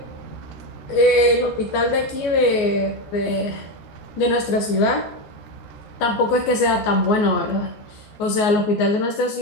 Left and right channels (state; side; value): late; right; 14 ms